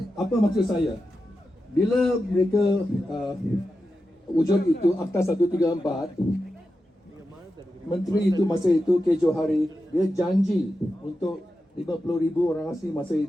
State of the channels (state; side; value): normal; both; correlation 0.90